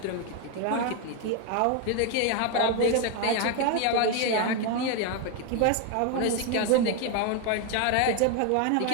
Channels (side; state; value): both; different; correlation 0.01